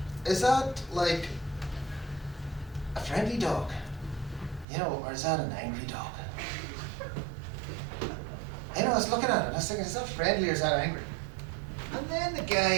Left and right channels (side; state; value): left; drops out; at 4.7 s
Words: like a friendly dog? Or is that an angry dog? I was looking at it and I was thinking, is that friendly or is that angry? And then the